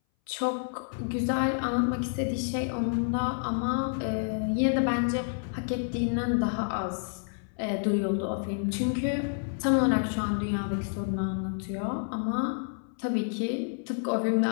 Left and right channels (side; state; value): right; silent; 58 dB below the other